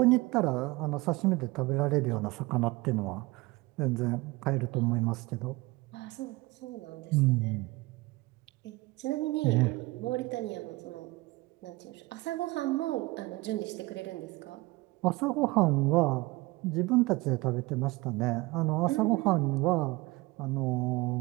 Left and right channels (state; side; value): quieter; left; 22.0 dB